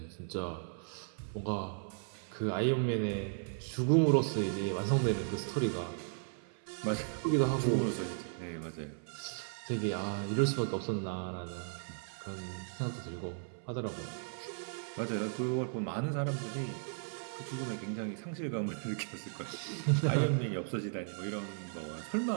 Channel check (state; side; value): silent; left; 54 dB below the other